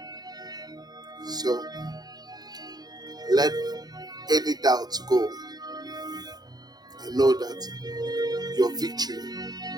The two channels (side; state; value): left; late; 0.19 ms